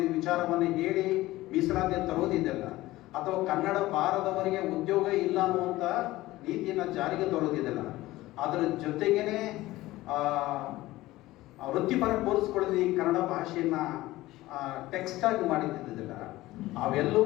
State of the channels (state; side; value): quieter; right; 17.5 dB